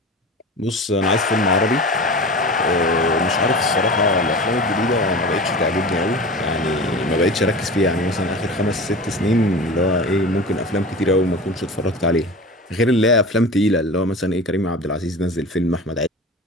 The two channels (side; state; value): both; normal; correlation 0.34